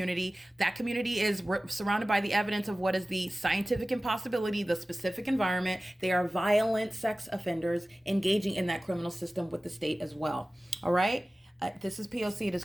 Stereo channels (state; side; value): normal; both; correlation 0.97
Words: That community is surrounded by the evidence of what is the scientific impossibility, the specific environment. They are violent sex offenders engaging in that criminal system with the state as well. All right. This is P.O.C. It